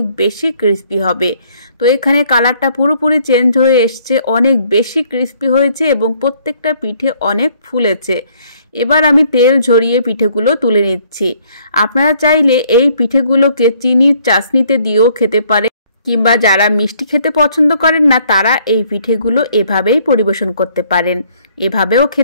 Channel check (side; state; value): both; inverted; correlation -0.64